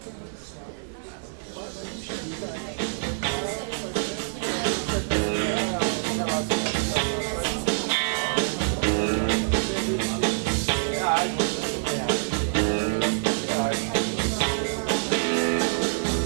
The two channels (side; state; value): left; silent; digital silence